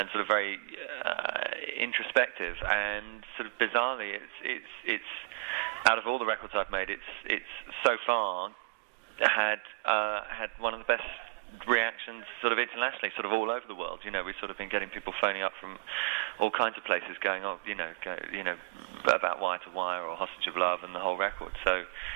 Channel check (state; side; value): quieter; left; 33.1 dB